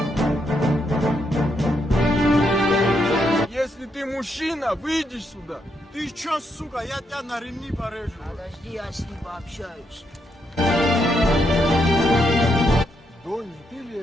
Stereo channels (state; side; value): normal; both; correlation 0.78